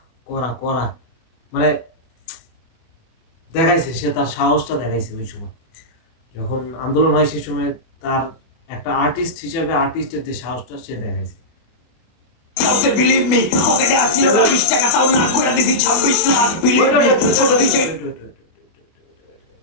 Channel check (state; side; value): late; right; 24 ms